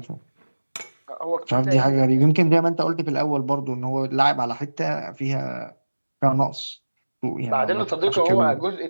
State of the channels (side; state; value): both; inverted; correlation -1.00